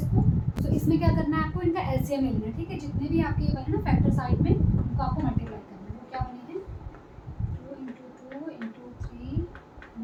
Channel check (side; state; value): both; identical; correlation 1.00